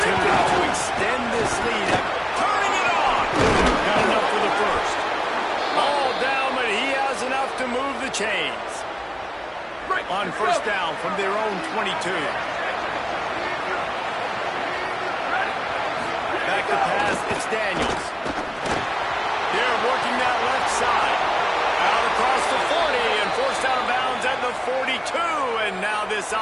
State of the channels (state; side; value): identical; both; correlation 1.00